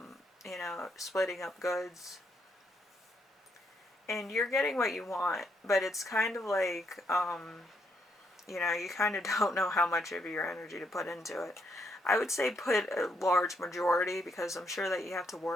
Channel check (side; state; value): both; normal; correlation 0.75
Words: splitting up goods. And you're getting what you want, but it's kind of like, you kind of don't know how much of your energy to put into it. I would say put a large majority, because I'm sure that you have to